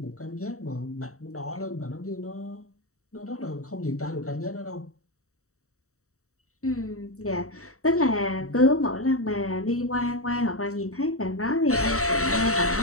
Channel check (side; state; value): right; late; 0.64 ms